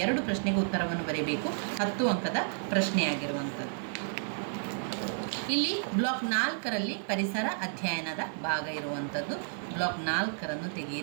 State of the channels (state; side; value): silent; left; digital silence